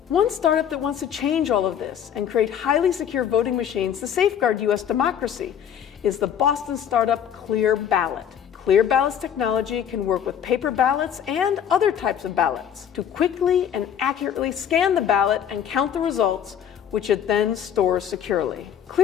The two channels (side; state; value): right; quieter; 8.9 dB